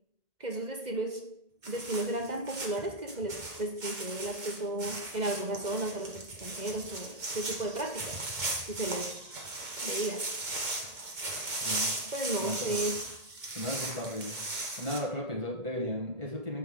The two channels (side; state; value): left; late; 2.2 ms